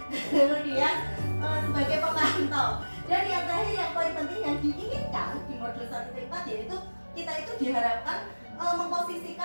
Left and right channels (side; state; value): both; inverted; correlation -1.00